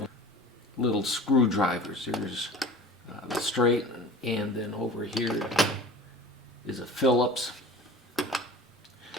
little screwdrivers. There's the straight, and then over here is a Phillips,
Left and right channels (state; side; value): normal; both; correlation 0.40